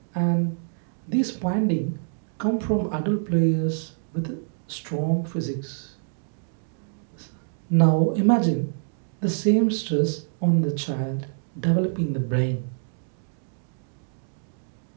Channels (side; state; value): left; silent; digital silence